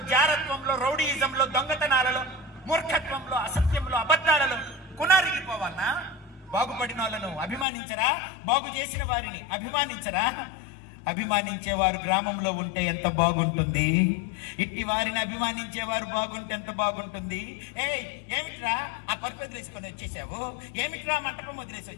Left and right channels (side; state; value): right; drops out; at 7.7 s